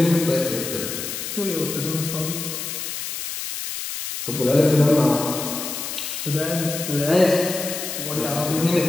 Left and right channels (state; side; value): noise; left; hiss, 6 dB below the sound